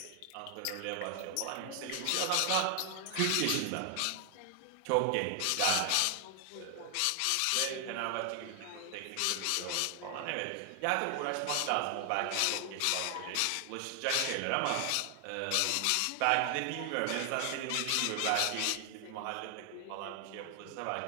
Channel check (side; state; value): both; different; correlation 0.00